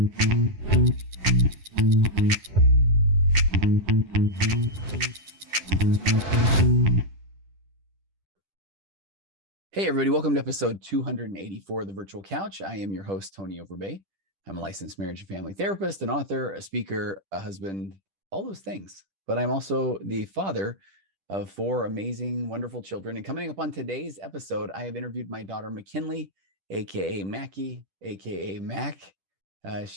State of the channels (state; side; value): late; left; 10 ms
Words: everybody. Welcome to episode 284 of The Virtual Couch. I am your host, Tony Overbay. I'm a licensed marriage and family therapist, an author, a speaker, a husband, all those things. But I'm also the father of 4 amazing, wonderful children. And coming up on today's episode, I have interviewed my daughter, McKinley, aka Mackie, aka Mac.